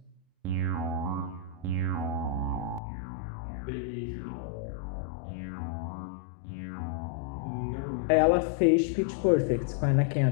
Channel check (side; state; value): right; drops out; at 2.8 s